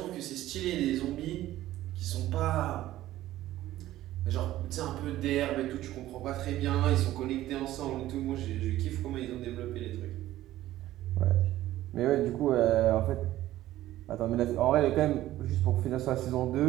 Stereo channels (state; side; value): quieter; left; 14.6 dB